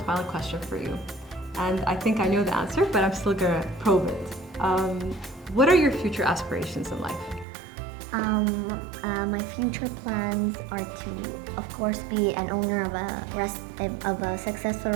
question for you, and I think I know the answer, but I'm still gonna probe it. What are your future aspirations in life? My future plans are to, of course, be an owner of a successful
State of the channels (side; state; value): left; drops out; at 7.5 s